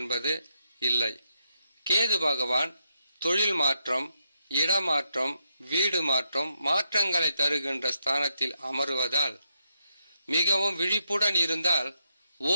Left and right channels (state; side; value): inverted; both; correlation -0.81